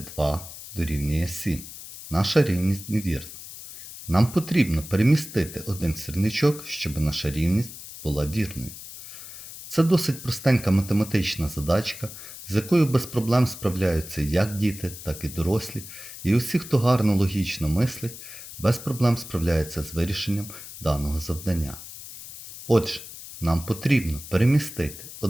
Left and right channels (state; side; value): noise; left; hiss, 13 dB below the sound